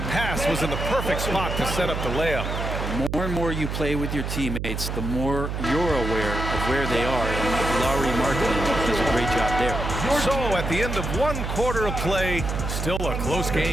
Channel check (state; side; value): noise; right; hum, 3 dB below the sound